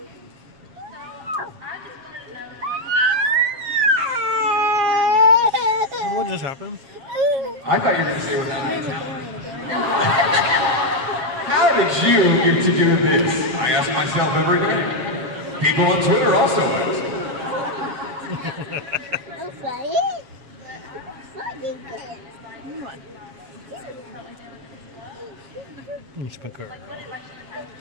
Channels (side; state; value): left; late; 7.3 ms